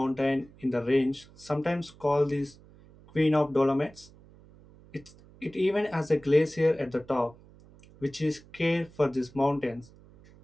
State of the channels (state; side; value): noise; right; hum, 24 dB below the sound